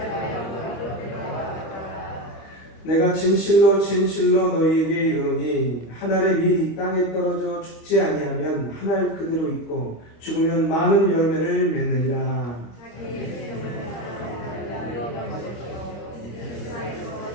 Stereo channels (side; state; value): right; late; 25 ms